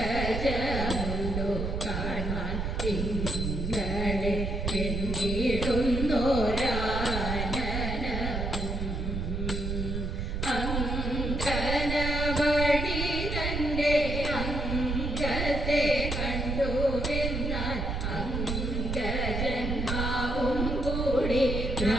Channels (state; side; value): noise; right; rumble, 2 dB below the sound